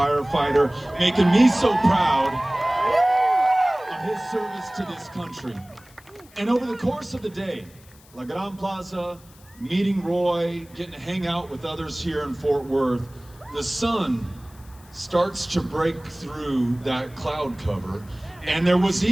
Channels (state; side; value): noise; left; hiss, 26 dB below the sound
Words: making me so proud of his service to this country. And over the course of the day, La Gran Plaza, meeting Roy, getting to hang out with others here in Fort Worth, the sun starts to break through that cloud cover, and there was